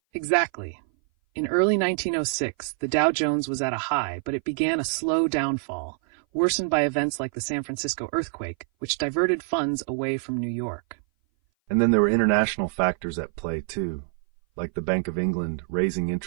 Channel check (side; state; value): left; silent; 57 dB below the other